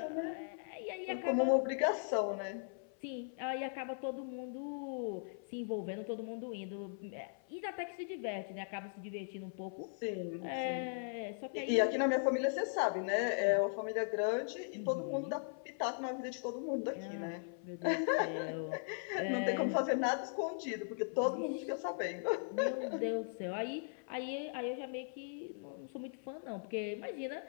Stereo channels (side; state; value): right; silent; 52 dB below the other